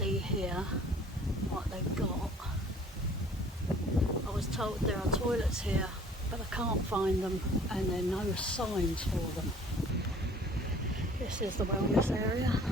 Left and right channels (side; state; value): both; normal; correlation 0.52